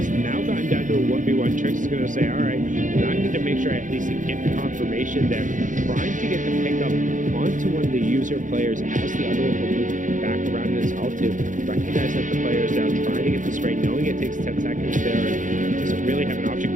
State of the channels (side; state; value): left; late; 0.37 ms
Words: now gotten down to a 1v1. Trix is going to say, all right, I need to make sure I at least get the confirmation there, trying to get the pickup onto one of the user players as the other one will move back around in his Altu. Recognize that the player is down, trying to get the spray, knowing it takes 10 seconds there, and doesn't really have an